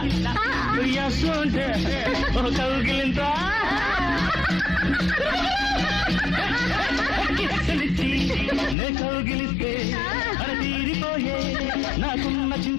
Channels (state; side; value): drops out; right; at 8.8 s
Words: ఉయ్యాసుంటే ఓ కౌగిలింత కిచ్చలిచ్చి నే కౌగిలిస్తే అర తీరిపోయే నాకున్న